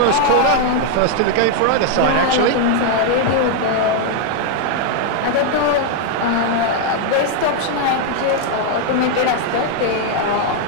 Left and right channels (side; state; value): both; different; correlation 0.00